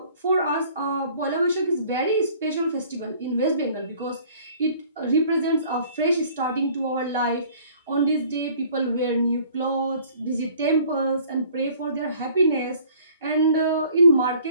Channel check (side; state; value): both; inverted; correlation -0.54